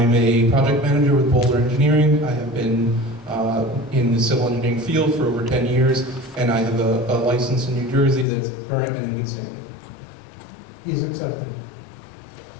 a project manager with Boulder Engineering. I have been in the civil engineering field for over 10 years, and I have a license in New Jersey that's current and in good standing. He's accepted.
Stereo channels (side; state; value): right; drops out; at 8.2 s